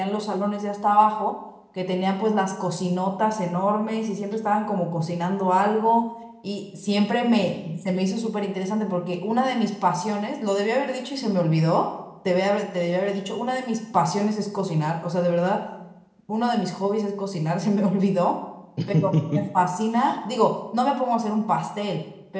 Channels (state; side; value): identical; both; correlation 1.00